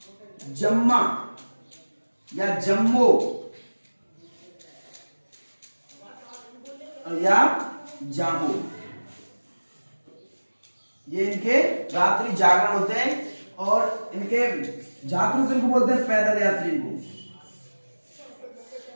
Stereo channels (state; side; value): inverted; both; correlation -1.00